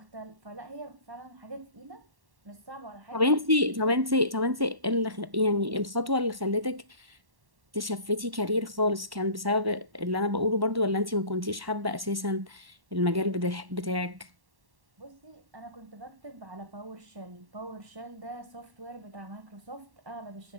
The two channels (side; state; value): left; late; 1.1 ms